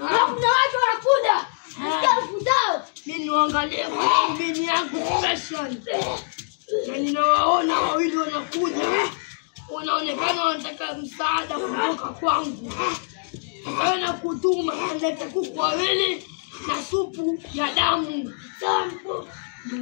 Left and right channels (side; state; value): right; silent; digital silence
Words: watu wanakuja. Nasikia kuzao. Mimi niangalie mimi yangu special. Na ninawaona wawili wanakuja. Wanaonekana wanataka msaada kutoka kwangu. Nataka kutuma nilete kuku wawili na supu ya damu. Sampo.